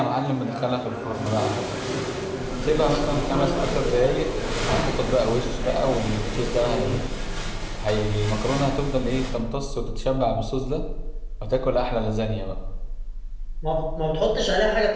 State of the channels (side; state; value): both; identical; correlation 1.00